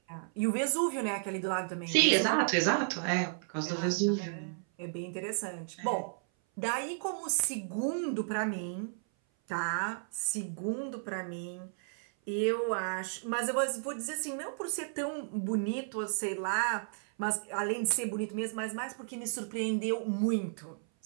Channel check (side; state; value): left; silent; 56 dB below the other